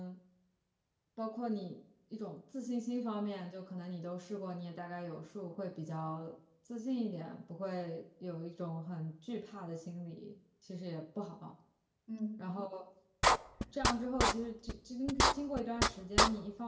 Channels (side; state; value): both; identical; correlation 1.00